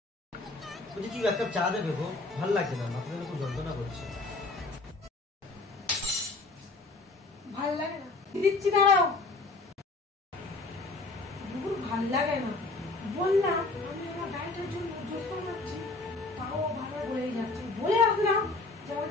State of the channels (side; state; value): right; quieter; 3.4 dB